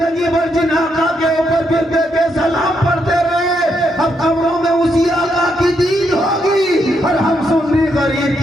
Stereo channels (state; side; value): normal; both; correlation 0.78